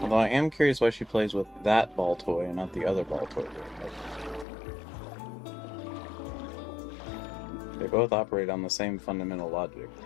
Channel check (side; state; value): right; drops out; at 4.5 s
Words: I am curious why she plays with that ball toy and not the other ball toy. They both operate on the same fundamental logic.